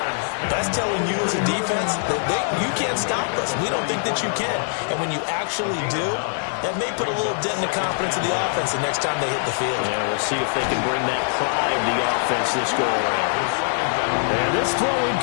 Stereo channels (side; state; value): right; silent; digital silence